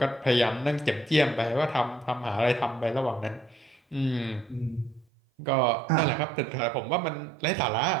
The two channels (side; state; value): left; drops out; at 5.1 s